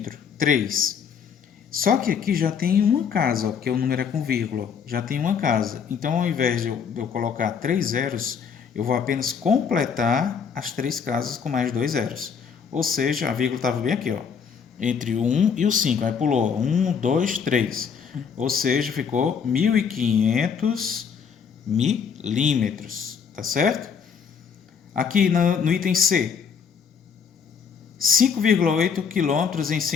3. Só que aqui já tem uma casa, ó, porque o número é com vírgula, já tem uma casa. Então, ao invés de eu colocar 3 zeros, eu vou apenas completar as 3 casas com mais 2 zeros. Ou seja, a vírgula estava bem aqui, ó, entre o 1 e o 5. Aí pulou 1, 2, 3. Ou seja, ficou 1.500 milímetros, tá certo? Aqui no item C, 5,8 quilômetros em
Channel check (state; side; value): quieter; right; 6.7 dB